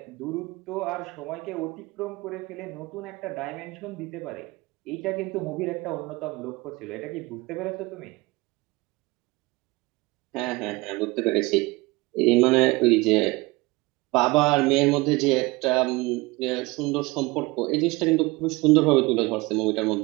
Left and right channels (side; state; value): left; quieter; 22.8 dB